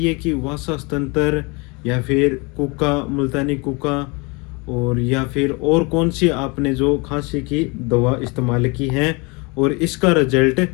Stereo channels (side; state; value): right; quieter; 28.7 dB